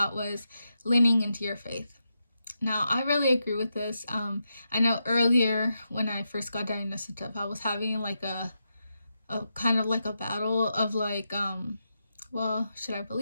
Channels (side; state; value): both; inverted; correlation -0.86